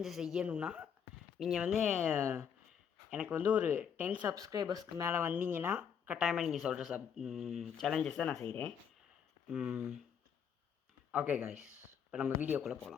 செய்யணுன்னா நீங்கள் எனக்கு ஒரு 10 சப்ஸ்கிரைபர்ஸ்க்கு மேலே வந்தீங்கன்னா கட்டாயமாக நீங்கள் சொல்கிற சேலஞ்சஸை நான் செய்கிறேன். ஓகே காய்ஸ், இப்போ நம்ம வீடியோக்குள்ளே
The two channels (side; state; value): right; quieter; 7.7 dB